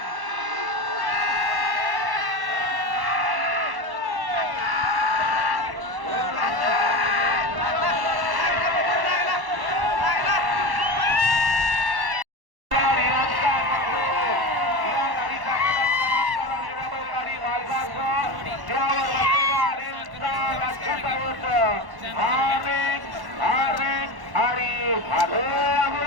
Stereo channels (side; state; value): left; late; 1.1 ms